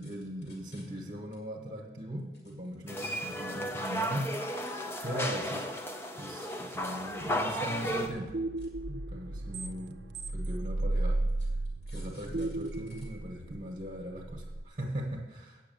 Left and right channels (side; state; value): both; normal; correlation 0.68